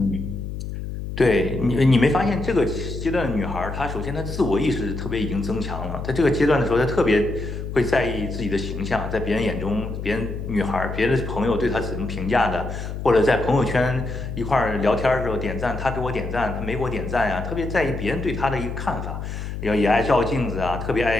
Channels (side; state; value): left; noise; hum, 6 dB below the sound